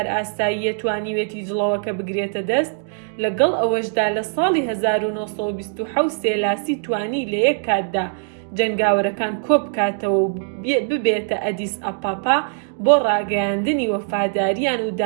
ئاسایی توانیوێتی جڵەوەکە بگرێتە دەست، لەگەڵ ئەوەشدا لە ساڵی 1927 سێلاسی توانی لە یەک کاتدا جەنگاوەرەکان کۆبکاتەوە و ببێتە ئەدیس ئەپاپا بۆ ڕاگەیاندنی وەفاداریان و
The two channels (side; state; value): left; silent; digital silence